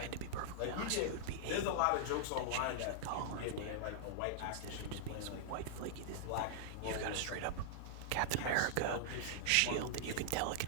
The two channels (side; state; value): both; different; correlation -0.01